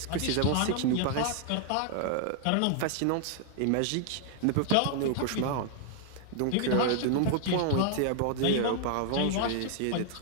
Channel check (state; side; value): different; both; correlation 0.00